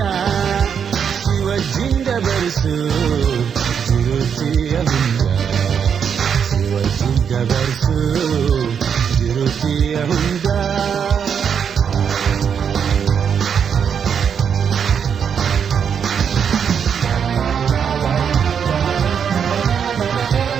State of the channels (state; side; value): quieter; left; 7.4 dB